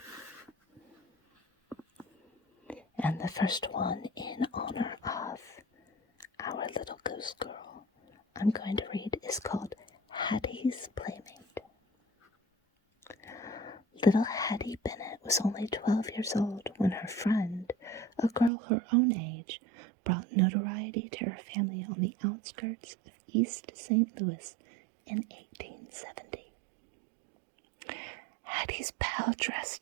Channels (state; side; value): drops out; left; at 18.5 s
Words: And the first one, in honor of our little ghost girl, I'm going to read is called Hattie's Playmate. Little Hattie Bennett was only 12 years old when her friend, a girl her own age, brought notoriety to her family on the outskirts of East St. Louis in 1870. Hattie's pal